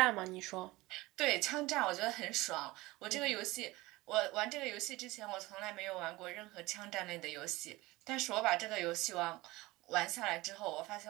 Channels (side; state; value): left; quieter; 20.3 dB